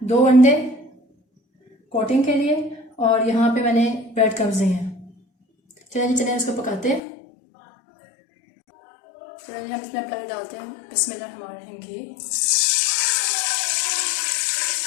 2 अंडे कोटिंग के लिए, और यहाँ पे मैंने ब्रेड क्रम्स दिए हैं। चलिए इसको पकाते हैं। चलिए हम इसमें पानी डालते हैं। बिस्मिल्लाहिर्रहमानिर्रहीम। घी,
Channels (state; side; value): drops out; right; at 7.0 s